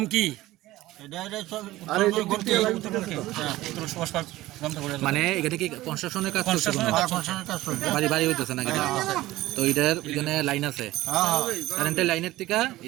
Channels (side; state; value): left; quieter; 17.0 dB